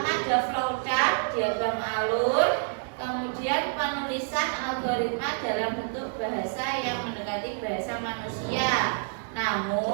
ada flowchart, diagram alur, kemudian penulisan algoritma dalam bentuk bahasa yang mendekati bahasa manusia,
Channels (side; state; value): left; silent; 59 dB below the other